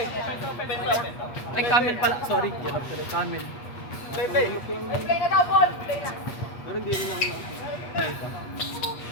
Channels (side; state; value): right; late; 8.1 ms